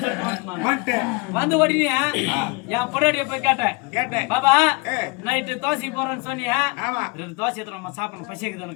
சொல்லிட்டு வந்து உடனே என் பொண்டாட்டிய போய் கேட்டேன் பாபா நைட்டு தோசைக்கு போறேன்னு சொன்னியா 2 தோசை எடுத்து நம்ம சாப்பிடணும்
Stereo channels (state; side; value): quieter; right; 28.2 dB